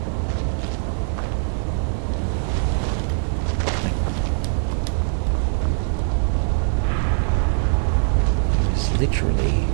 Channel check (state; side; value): silent; left; 64 dB below the other